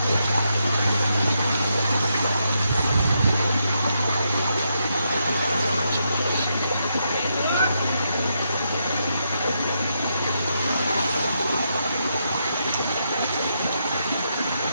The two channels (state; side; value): inverted; both; correlation -0.81